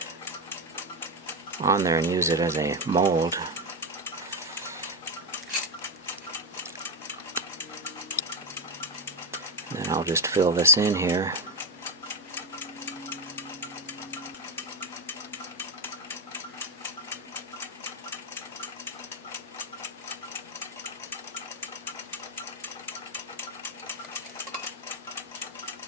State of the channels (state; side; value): normal; both; correlation 0.10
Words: on there and use it as a mold. And then I'll just fill this in here.